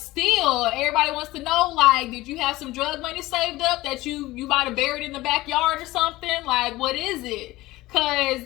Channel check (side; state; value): right; quieter; 18.3 dB